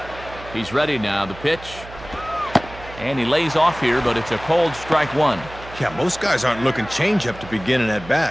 He's ready now. The pitch. And he lays off here, but it's a cold strike one. Yeah, most guys aren't looking changeup to begin an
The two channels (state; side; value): noise; right; hum, 16 dB below the sound